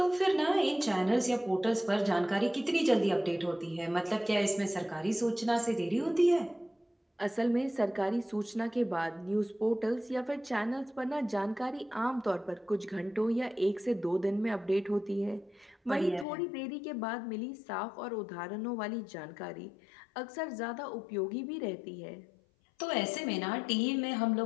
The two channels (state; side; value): drops out; right; at 16.2 s